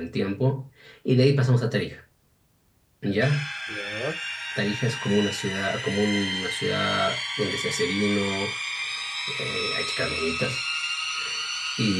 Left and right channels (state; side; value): identical; both; correlation 1.00